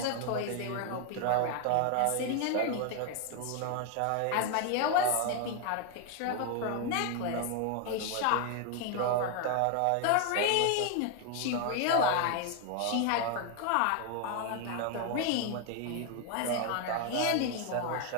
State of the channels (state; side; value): different; both; correlation 0.01